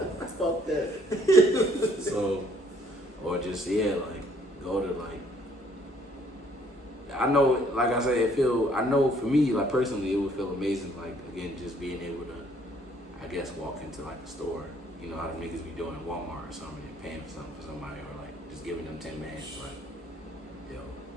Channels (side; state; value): both; normal; correlation 0.63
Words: Fuck that. So, or just like go to like. I know, like I said, I know for me, like personally, it would feel amazing, like again, just being able to, I guess, walk into like a store, you know how the niggas be doing at Walmart or something, and paying for something for somebody, or like just giving them 10 bands, like, yo,